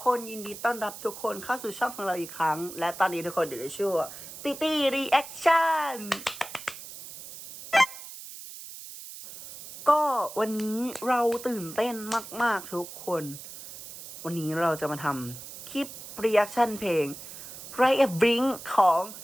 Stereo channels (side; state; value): right; noise; hiss, 13 dB below the sound